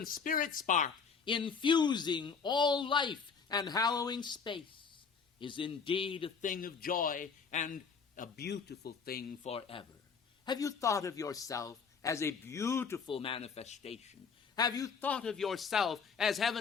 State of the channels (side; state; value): right; quieter; 5.7 dB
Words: spirit spark, infusing all life and hallowing space, is indeed a thing of joy and a beautiful thing forever. Have you thought of yourself as a beautiful manifestation? Have you thought of yourself as